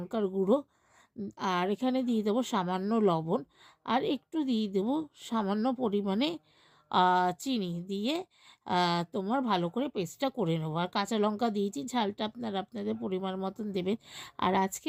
গুঁড়ো। আর এখানে দিয়ে দেবো সামান্য লবণ। আর একটু দিয়ে দেবো সামান্য পরিমাণে চিনি দিয়ে তোমার ভালো করে পেস্টটা করে নেবো। আর কাঁচা লঙ্কা দিয়েছি, ঝালটা আপনারা আপনাদের পরিমাণ মতন দেবেন। আর আজকে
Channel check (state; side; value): identical; both; correlation 1.00